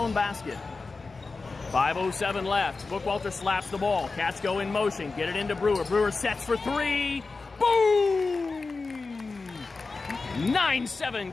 basket. 5:07 left. Bookwalter slaps the ball. Cats go in motion. Get it into Brewer. Brewer sets for three. Boom!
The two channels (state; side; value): quieter; right; 4.0 dB